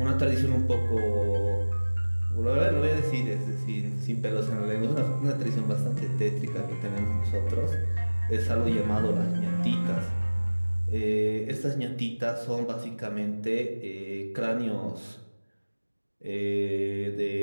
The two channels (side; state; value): both; inverted; correlation -1.00